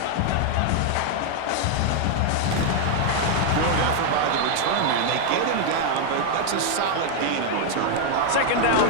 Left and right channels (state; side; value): different; both; correlation 0.00